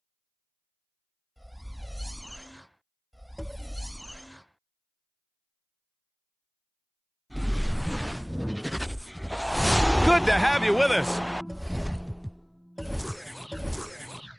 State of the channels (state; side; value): identical; both; correlation 1.00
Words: to have you with us.